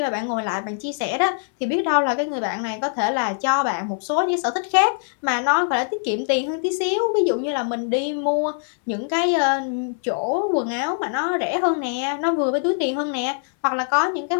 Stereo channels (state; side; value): silent; right; 64 dB below the other